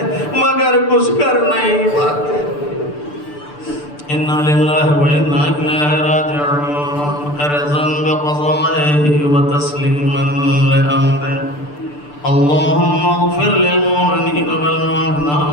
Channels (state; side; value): late; right; 6.8 ms